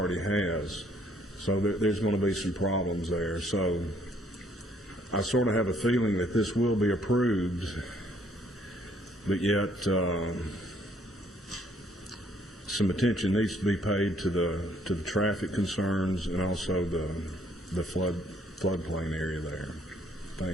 has. So there's going to be some problems there. So I sort of have a feeling that this will be approved, but yet some attention needs to be paid to the traffic concerns and also the floodplain area there.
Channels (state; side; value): normal; both; correlation 0.66